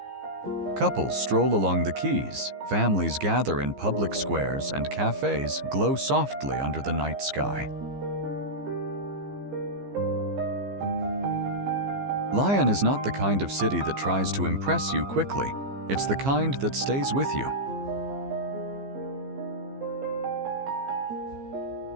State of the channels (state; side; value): late; left; 15 ms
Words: Couples stroll along the quays, families gather in public squares, and cafes glow softly under the night sky. Lyon is not the kind of city that tries to impress you quickly. It's the kind that stays with you.